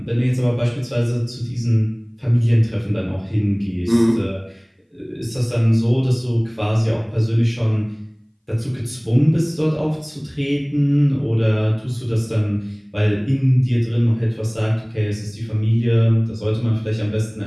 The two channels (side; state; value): both; identical; correlation 1.00